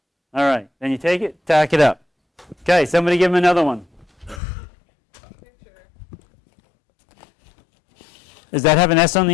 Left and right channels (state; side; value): drops out; right; at 4.4 s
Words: All right. Then you take it, tack it up. Okay, somebody give him another one. Picture. Does that have an S on